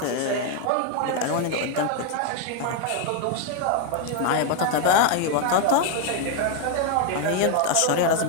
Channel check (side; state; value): both; different; correlation 0.01